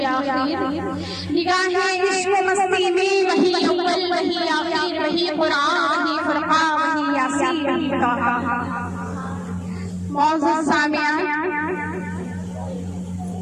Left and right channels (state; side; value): identical; both; correlation 1.00